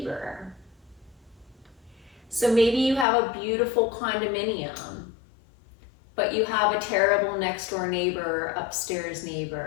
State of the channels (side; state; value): right; drops out; at 3.1 s